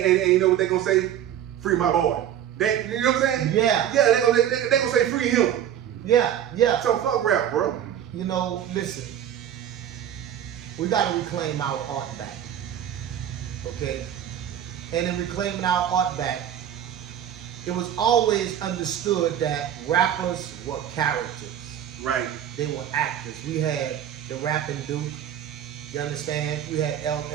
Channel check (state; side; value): quieter; left; 10.2 dB